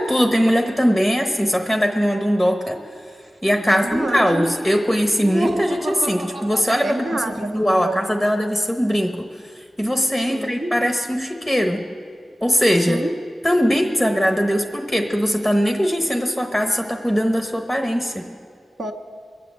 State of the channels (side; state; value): both; normal; correlation 0.96